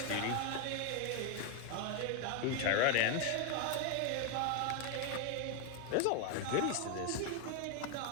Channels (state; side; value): different; both; correlation 0.01